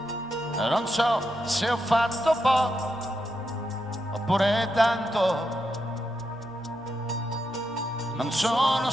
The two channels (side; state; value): both; normal; correlation 0.84